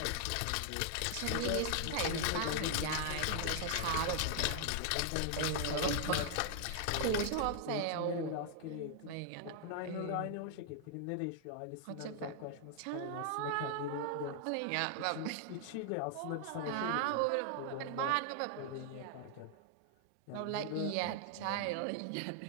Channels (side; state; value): both; different; correlation 0.00